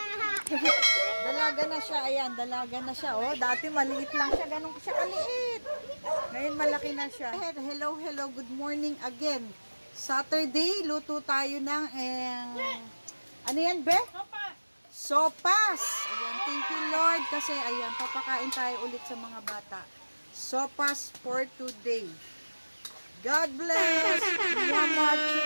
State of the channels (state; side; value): inverted; both; correlation -1.00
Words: Dalaga na siya, ayan, dalaga na siya. Oh, dati maliit lang siya, ganun siya kaliit. Ngayon malaki na siya. Hello, good morning again. Saturday, luto tayo ng, ano yan, be? Sopas! Ayan, thank you, Lord. Kasi, ayan, papakain tayo ulit sa mga bata. Sopas for today. God bless! Mama,